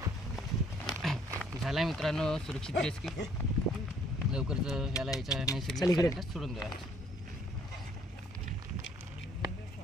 झालाय मित्रांनो सुरक्षित रेस्क्यू. लवकरच याला याच्या चल नैसर्गिक इकडे. सानिध्यात सोडून द्या.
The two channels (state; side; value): normal; both; correlation 0.62